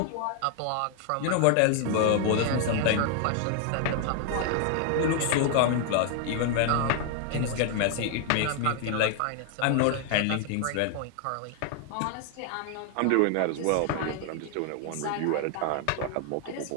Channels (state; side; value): different; both; correlation 0.00